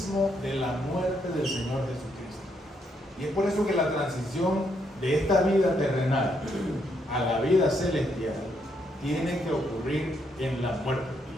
de la muerte del Señor Jesucristo. Y es por eso que la transición de esta vida terrenal a la vida celestial tiene que ocurrir en la muerte.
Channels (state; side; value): normal; both; correlation 0.75